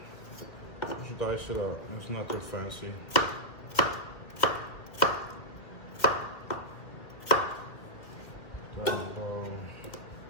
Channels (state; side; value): late; right; 2.3 ms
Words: just dice it up. It's nothing fancy.